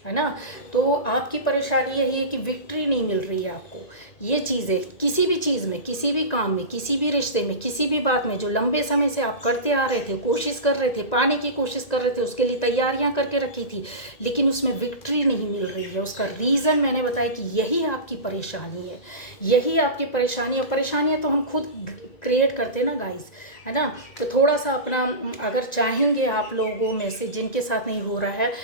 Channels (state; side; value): late; right; 1.9 ms